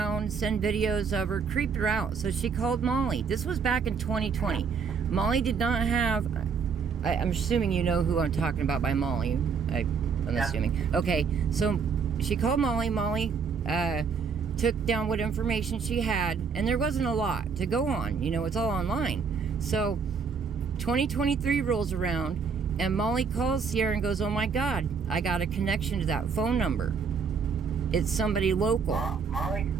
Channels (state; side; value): quieter; left; 5.8 dB